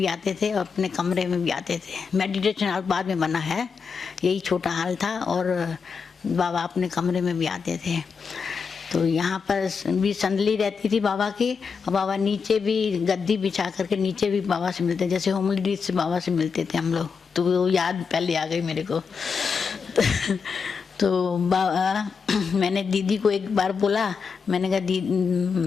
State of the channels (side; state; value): right; quieter; 5.7 dB